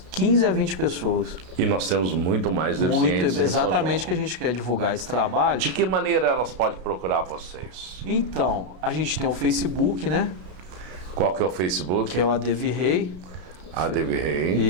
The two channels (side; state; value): left; late; 33 ms